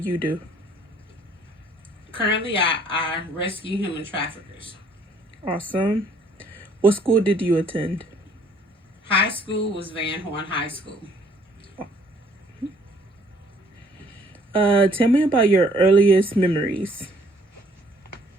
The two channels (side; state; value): both; normal; correlation 0.61